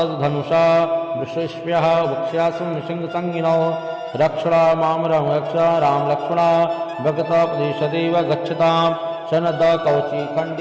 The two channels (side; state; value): both; identical; correlation 1.00